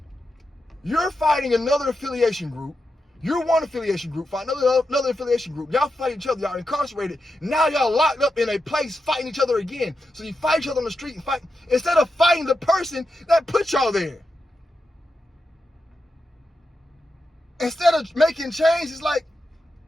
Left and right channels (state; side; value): normal; both; correlation 0.88